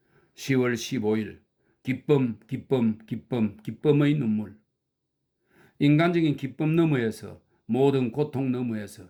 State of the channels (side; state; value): both; identical; correlation 1.00